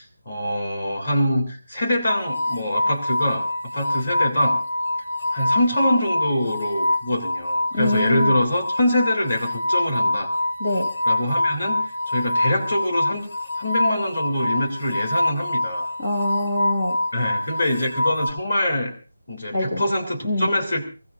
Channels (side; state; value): both; inverted; correlation -0.89